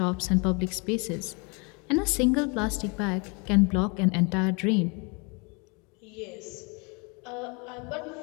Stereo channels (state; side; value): quieter; right; 31.8 dB